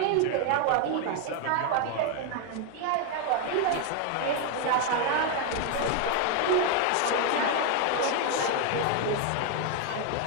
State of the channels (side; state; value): both; different; correlation 0.01